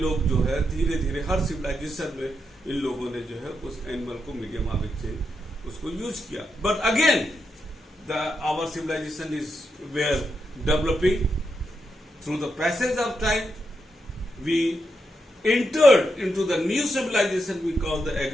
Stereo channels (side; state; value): both; normal; correlation 0.83